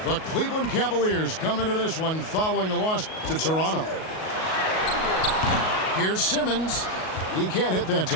The Cleveland Cavaliers come into this one following a loss to Toronto. Here's Simmons. He can't hit that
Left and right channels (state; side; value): late; right; 38 ms